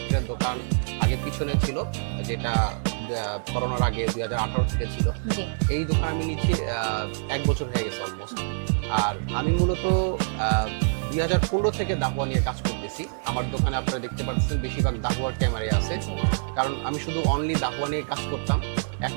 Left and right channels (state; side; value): silent; left; digital silence